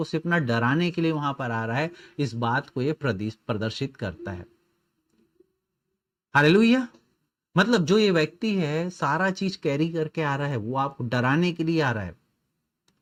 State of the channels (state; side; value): identical; both; correlation 1.00